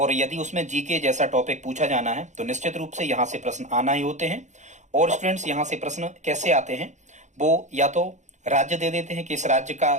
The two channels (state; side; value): late; left; 0.34 ms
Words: यदि उसमें जीके जैसा टॉपिक पूछा जाना है तो निश्चित रूप से यहाँ से प्रश्न आना ही होते हैं। और स्टूडेंट्स, यहाँ से प्रश्न कैसे आते हैं, वो या तो राज्य दे देते हैं कि इस राज्य का